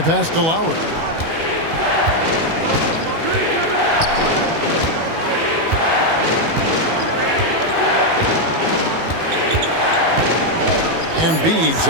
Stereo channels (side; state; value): left; late; 18 ms